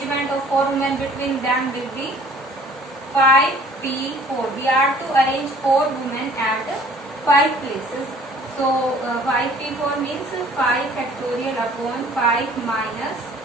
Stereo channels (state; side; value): normal; both; correlation 0.53